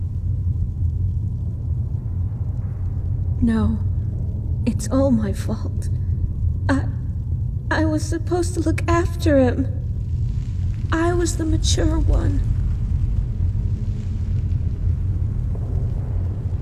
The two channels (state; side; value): identical; both; correlation 1.00